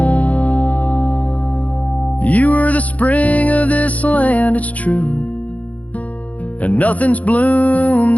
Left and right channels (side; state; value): right; late; 0.071 ms